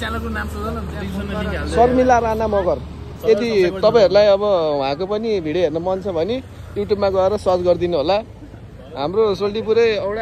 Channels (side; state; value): both; identical; correlation 1.00